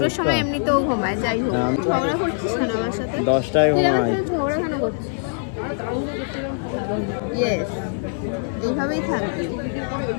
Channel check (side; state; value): right; silent; digital silence